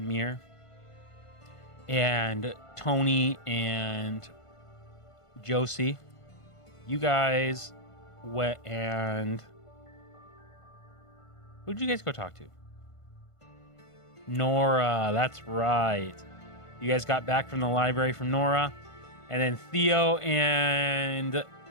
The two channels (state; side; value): late; right; 1.5 ms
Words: And Tony and Josie, you guys went and... Who'd you guys go talk to? Nora, that's right. You guys got back from the library from Nora. And then Theo and Theo